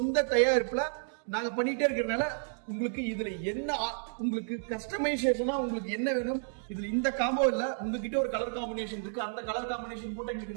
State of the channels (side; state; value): left; silent; digital silence